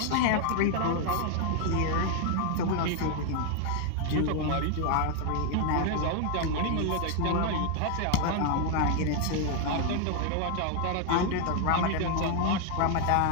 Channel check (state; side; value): different; both; correlation 0.00